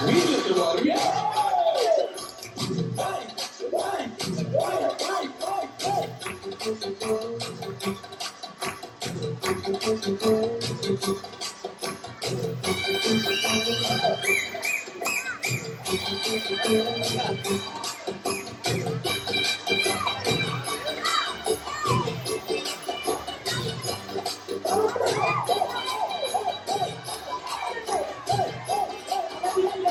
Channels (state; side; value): identical; both; correlation 1.00